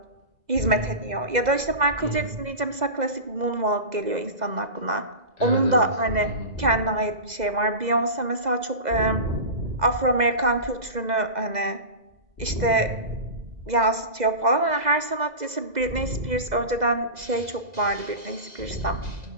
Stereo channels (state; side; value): late; left; 2.0 ms